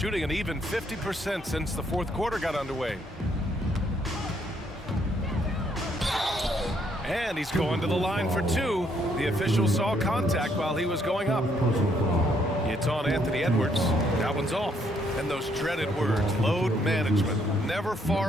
an even 50% since the fourth quarter got underway. And he's going to the line for two. The official saw contact while he was going up. It's on Anthony Edwards. That one's off. And those dreaded words, load management, never far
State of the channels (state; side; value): normal; both; correlation 0.70